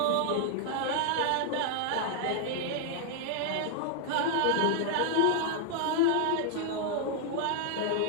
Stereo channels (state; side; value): different; both; correlation 0.00